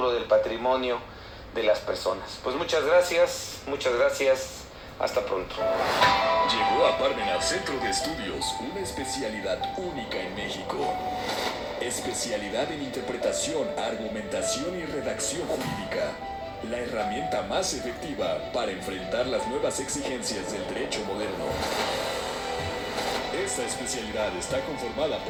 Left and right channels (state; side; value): identical; both; correlation 1.00